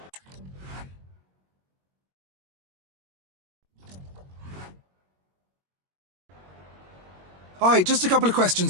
Hi, just a couple of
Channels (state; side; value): late; left; 22 ms